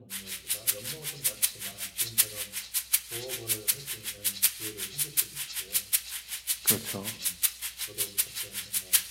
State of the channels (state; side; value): identical; both; correlation 1.00